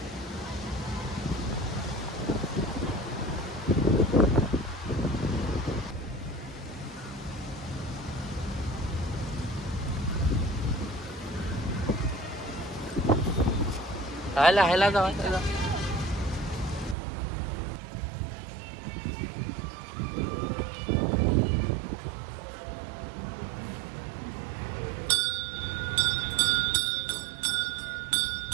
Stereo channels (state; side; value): drops out; left; at 16.9 s